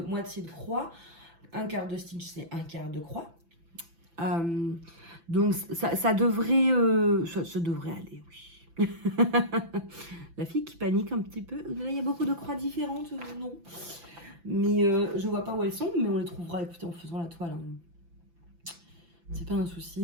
croix. Un quart de stitch, c'est un quart de croix. Donc ça devrait aller, oui. La fille qui panique un petit peu. Là, il y a beaucoup de croix différentes, non. Mais je vois pas où elles sont, mais on les trouvera, écoutez, en faisant la toile. Hein. C'est pas un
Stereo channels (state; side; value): late; left; 6.0 ms